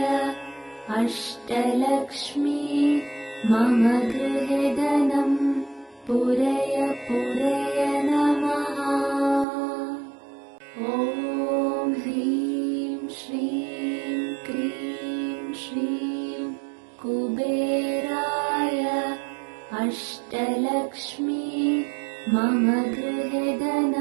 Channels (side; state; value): left; drops out; at 9.5 s